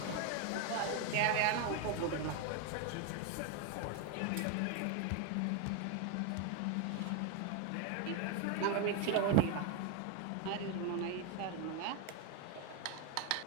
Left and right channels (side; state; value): both; different; correlation 0.02